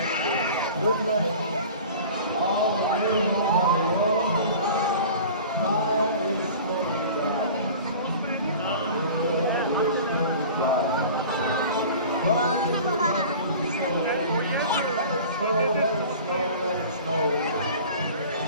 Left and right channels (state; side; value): inverted; both; correlation -0.41